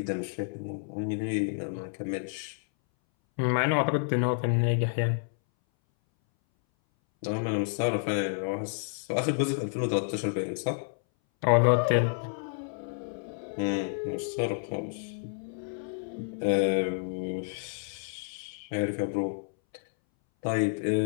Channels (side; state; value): right; silent; 58 dB below the other